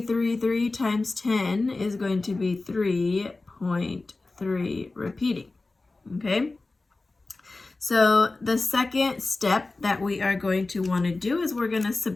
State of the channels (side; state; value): right; quieter; 3.4 dB